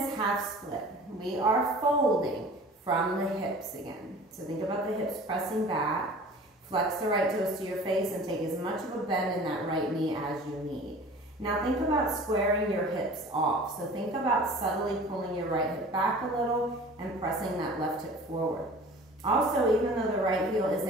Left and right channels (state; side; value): normal; both; correlation 0.43